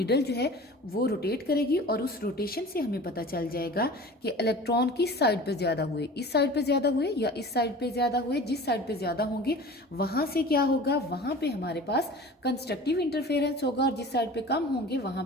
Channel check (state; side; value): normal; both; correlation 0.40